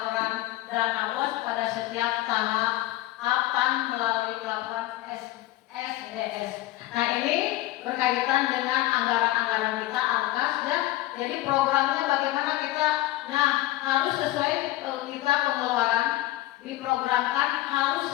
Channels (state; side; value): quieter; right; 16.5 dB